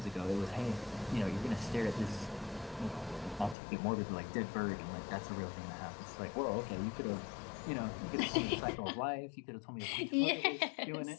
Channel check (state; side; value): drops out; right; at 3.6 s